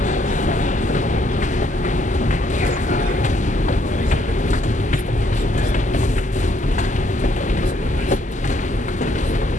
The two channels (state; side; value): normal; both; correlation 0.69